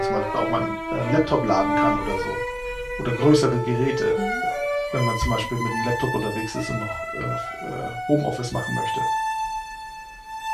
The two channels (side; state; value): both; identical; correlation 1.00